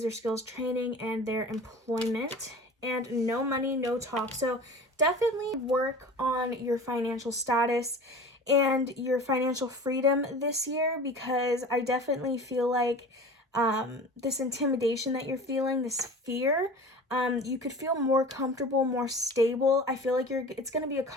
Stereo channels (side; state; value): both; normal; correlation 0.38